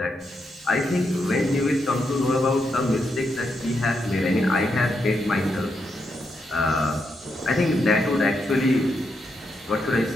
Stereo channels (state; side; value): normal; both; correlation 0.82